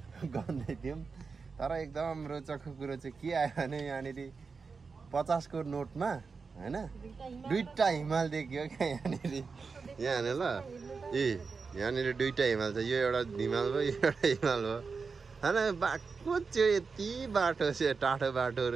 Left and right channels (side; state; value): left; quieter; 4.9 dB